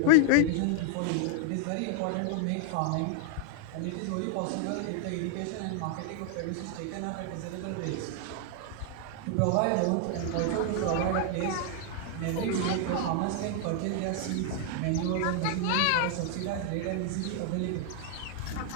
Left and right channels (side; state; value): both; different; correlation 0.00